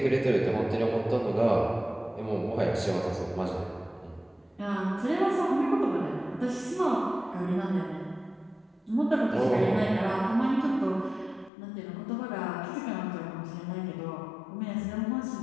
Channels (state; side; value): drops out; right; at 11.5 s